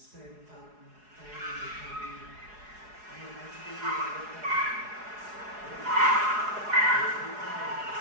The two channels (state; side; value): late; left; 4.7 ms